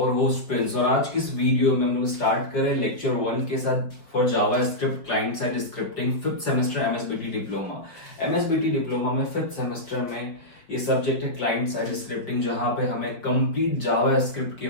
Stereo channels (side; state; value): right; late; 4.7 ms